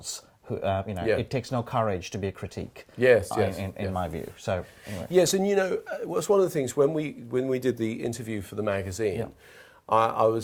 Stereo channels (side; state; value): both; identical; correlation 1.00